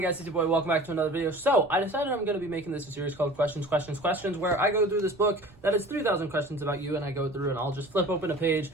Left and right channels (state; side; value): noise; right; rumble, 24 dB below the sound